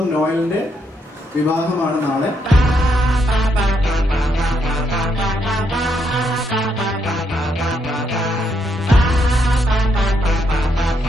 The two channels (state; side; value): normal; both; correlation 0.76